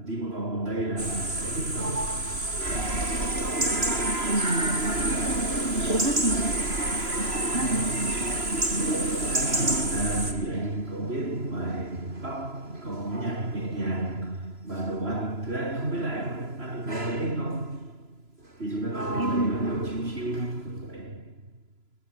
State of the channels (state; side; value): late; left; 3.0 ms